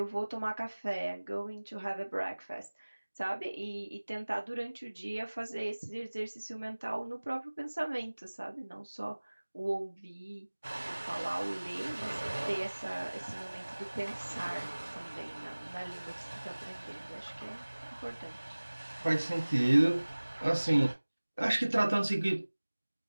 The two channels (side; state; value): both; inverted; correlation -1.00